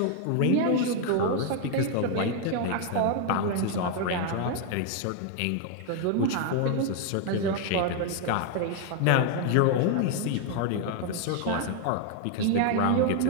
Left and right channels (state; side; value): different; both; correlation 0.00